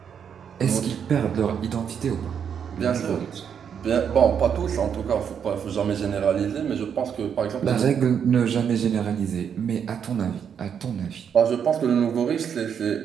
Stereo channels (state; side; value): quieter; left; 7.7 dB